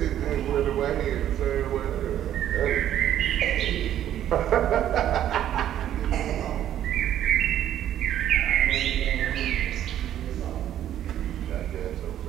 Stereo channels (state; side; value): quieter; left; 11.2 dB